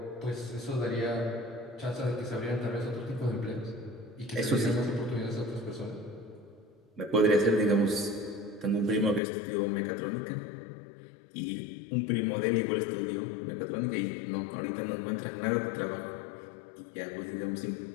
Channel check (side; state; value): right; drops out; at 9.2 s